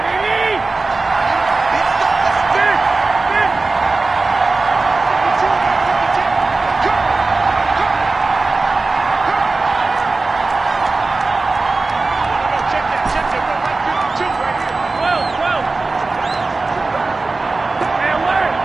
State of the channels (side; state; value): left; quieter; 3.6 dB